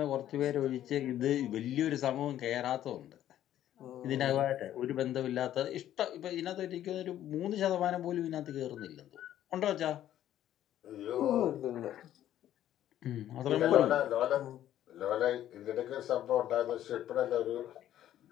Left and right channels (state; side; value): quieter; right; 12.0 dB